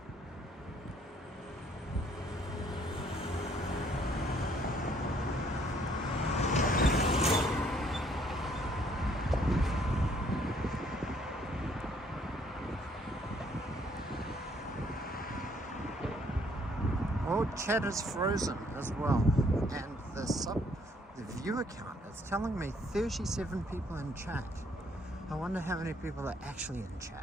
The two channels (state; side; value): normal; both; correlation 0.65